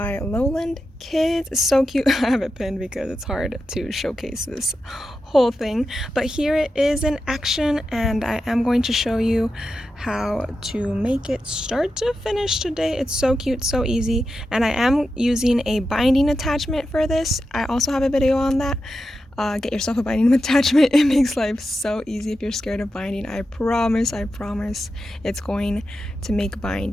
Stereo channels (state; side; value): normal; both; correlation 0.90